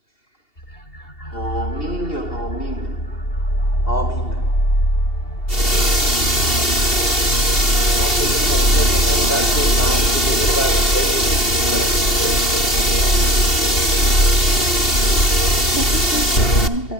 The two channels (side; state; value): right; late; 2.7 ms